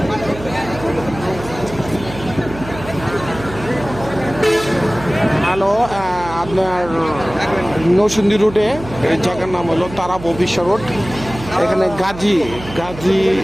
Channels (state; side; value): noise; right; hum, 13 dB below the sound